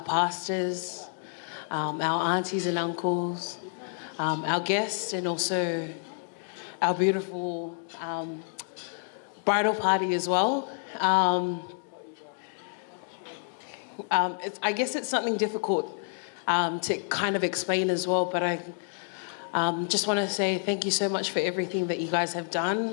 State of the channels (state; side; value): silent; right; 59 dB below the other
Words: pastors, our aunties and uncles, our guests, and also our beautiful bridal party as well. I guess it's something difficult to kind of explain as well, but I just want to say thank you so much for everything that you guys have